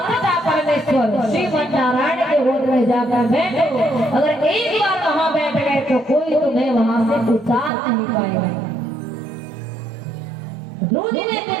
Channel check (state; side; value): drops out; left; at 7.7 s